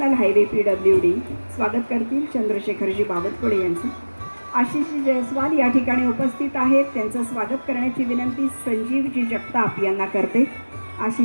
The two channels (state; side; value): inverted; both; correlation -1.00